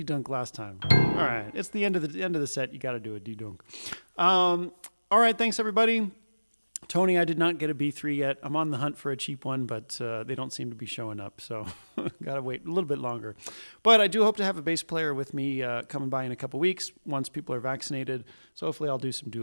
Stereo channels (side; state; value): both; inverted; correlation -1.00